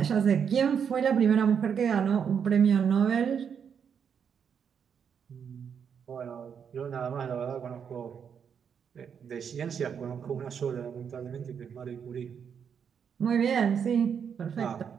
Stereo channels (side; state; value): left; quieter; 7.3 dB